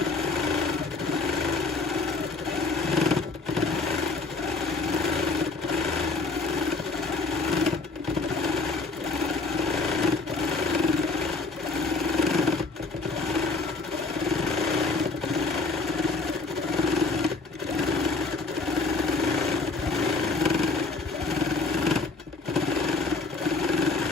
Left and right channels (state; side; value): quieter; right; 3.7 dB